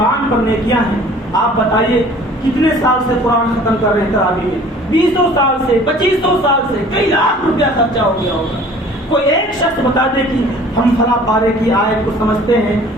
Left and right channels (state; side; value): normal; both; correlation 0.50